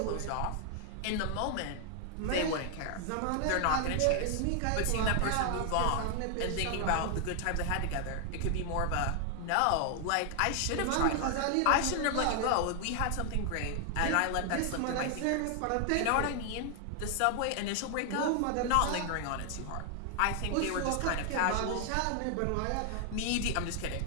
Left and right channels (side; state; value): both; different; correlation 0.00